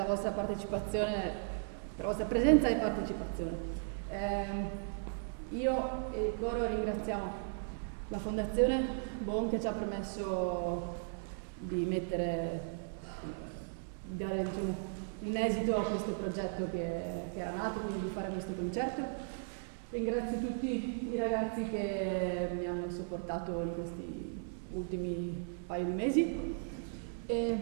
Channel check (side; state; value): left; silent; 53 dB below the other